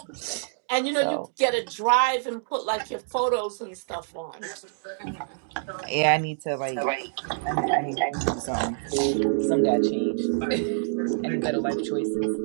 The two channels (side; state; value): left; silent; digital silence